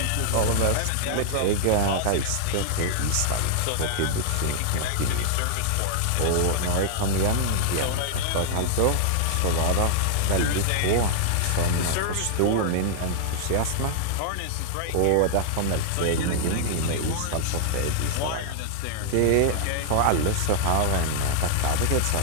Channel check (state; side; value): different; both; correlation -0.01